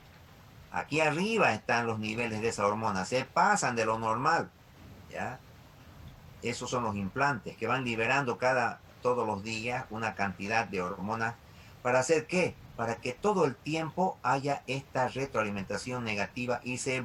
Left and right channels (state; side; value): identical; both; correlation 1.00